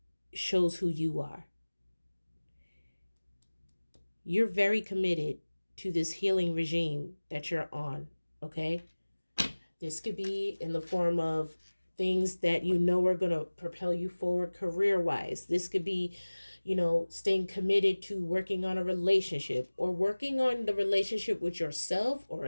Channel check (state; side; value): inverted; both; correlation -1.00